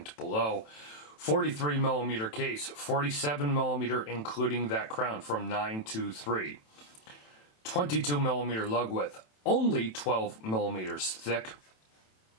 below. 43mm case, 47mm including that crown from 923. 22mm lug width, only 12mm thick.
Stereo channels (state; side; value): late; right; 27 ms